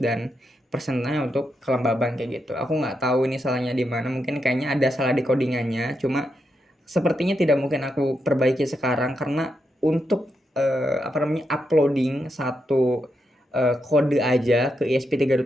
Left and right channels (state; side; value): normal; both; correlation 0.83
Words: persennya untuk kelembaban kayak gitu. Aku nggak tahu ini salahnya di mana. Mungkin kayaknya ada salah di codingannya. Cuma sepertinya tidak mungkin aku perbaiki sekarang karena untuk uploading satu kode aja ke